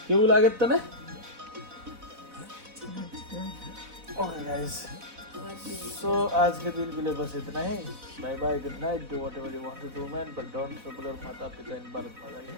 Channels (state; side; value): late; left; 4.0 ms